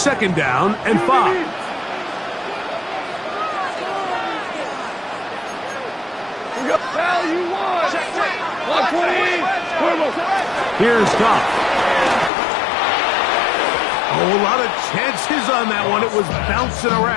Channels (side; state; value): right; drops out; at 12.3 s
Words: down and 5. Here's Goff. Oh, a lot of chances on that one. It was bouncing